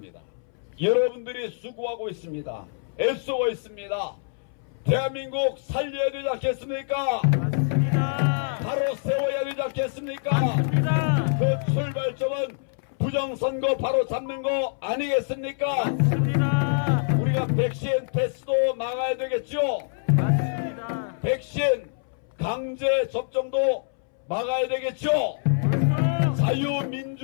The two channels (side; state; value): right; silent; 61 dB below the other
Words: 여러분들이 수고하고 있습니다. 애쓰고 있습니다. 대한민국 살려야 되지 않겠습니까? 맞습니다. 바로 세워야 되지 않겠습니까? 맞습니다. 그 출발점은 부정선거 바로 잡는 거 아니겠습니까? 맞습니다. 우리가 백신 패스도 막아야 되겠죠? 맞습니다. 백신 강제 접종도 막아야 되겠죠?